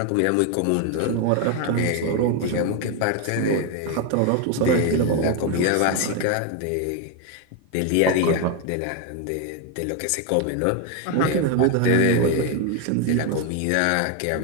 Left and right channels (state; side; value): different; both; correlation 0.01